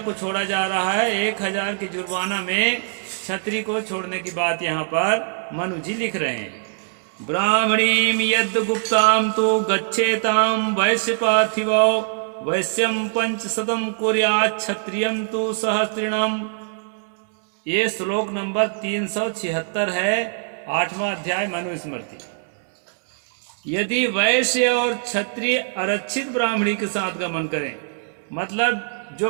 को छोड़ा जा रहा है। 1000 के जुर्माना में क्षत्रिय को छोड़ने की बात यहाँ पर मनु जी लिख रहे हैं। ब्राह्मणीम यद गुप्ताम तो गच्छेताम वैश्य पार्थिवो वैश्यम 500 कुर्यात् क्षत्रियम तो सहस्त्रिणम। ये श्लोक नंबर 376 है, 8वां अध्याय मनुस्मृति। यदि वैश्य और क्षत्रिय आरक्षित ब्राह्मणी के साथ गमन करें, मतलब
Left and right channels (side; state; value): left; silent; 64 dB below the other